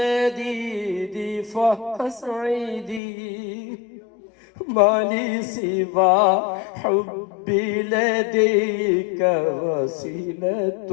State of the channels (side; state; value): right; drops out; at 3.0 s